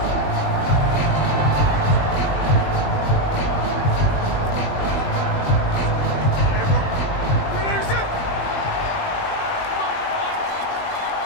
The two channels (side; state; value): right; late; 20 ms